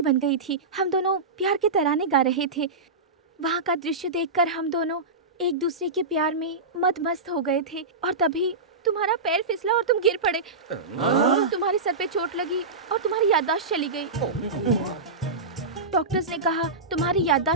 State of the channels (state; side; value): quieter; left; 3.6 dB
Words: बन गई थी। हम दोनों प्यार के तराने गा रहे थे। वहाँ का दृश्य देखकर हम दोनों एक दूसरे के प्यार में मदमस्त हो गए थे और तभी तुम्हारा पैर फिसला और तुम गिर पड़े। तुम्हारे सर पे चोट लगी और तुम्हारी याददाश्त चली गई। डॉक्टर्स ने कहा तुम्हारी